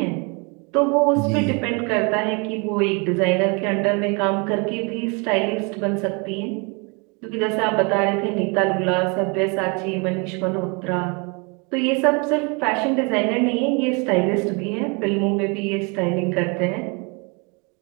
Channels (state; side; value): quieter; left; 31.9 dB